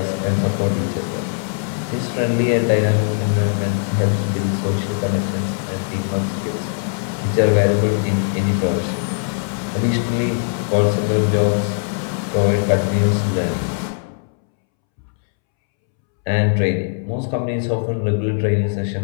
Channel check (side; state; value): right; silent; 66 dB below the other